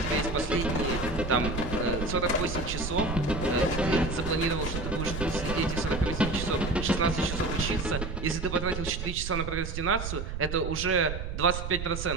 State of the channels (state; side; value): noise; right; rumble, 5 dB below the sound